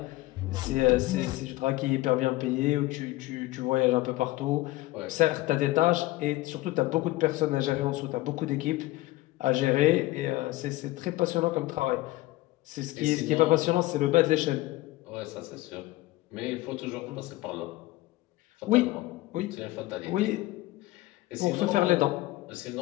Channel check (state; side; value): quieter; right; 18.3 dB